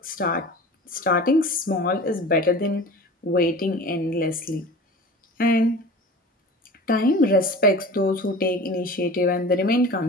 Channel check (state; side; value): normal; both; correlation 0.38